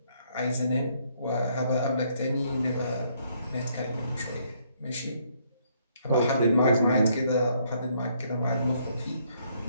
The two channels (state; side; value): inverted; both; correlation -0.70